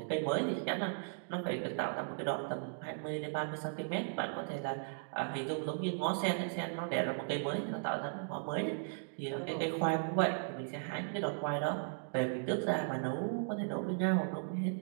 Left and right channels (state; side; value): silent; left; digital silence